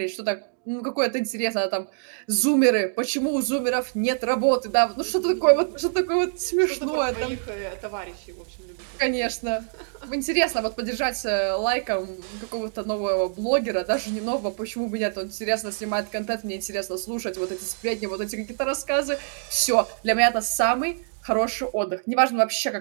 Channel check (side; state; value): left; silent; digital silence